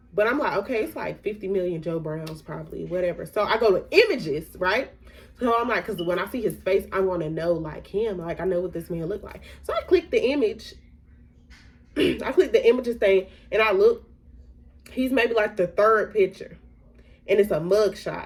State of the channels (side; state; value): both; identical; correlation 1.00